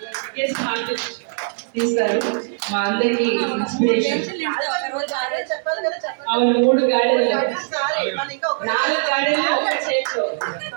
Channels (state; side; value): silent; left; digital silence